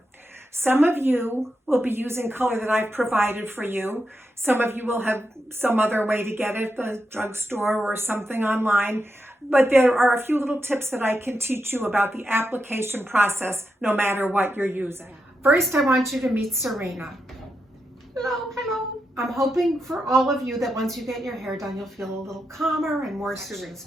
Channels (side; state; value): both; normal; correlation 0.85